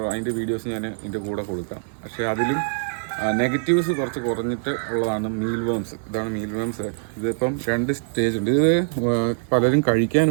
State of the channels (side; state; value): left; silent; digital silence